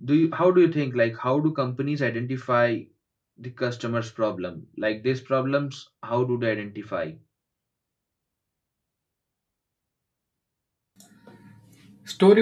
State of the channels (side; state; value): both; identical; correlation 1.00